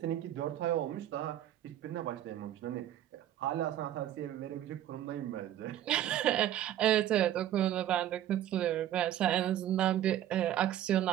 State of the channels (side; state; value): left; quieter; 11.9 dB